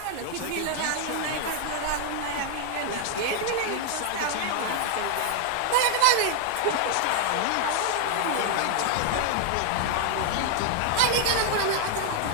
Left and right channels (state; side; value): different; both; correlation 0.00